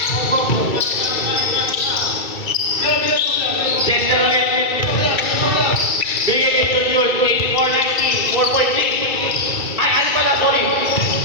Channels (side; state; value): right; late; 2.3 ms